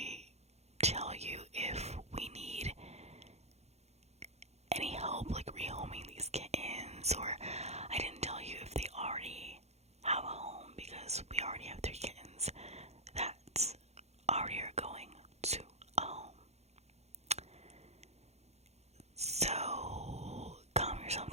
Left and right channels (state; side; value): late; left; 0.31 ms